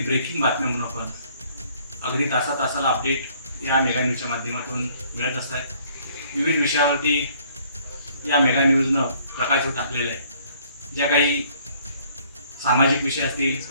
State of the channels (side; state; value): both; inverted; correlation -0.61